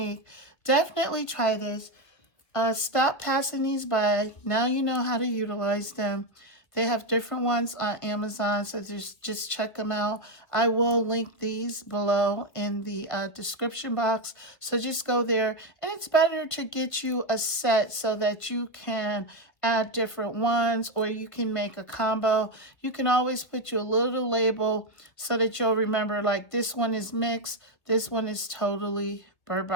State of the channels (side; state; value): right; late; 1.6 ms